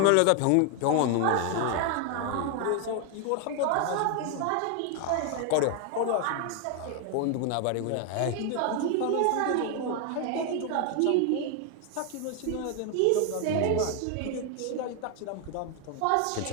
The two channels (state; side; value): different; both; correlation 0.01